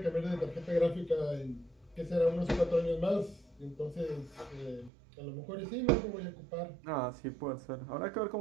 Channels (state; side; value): drops out; left; at 4.9 s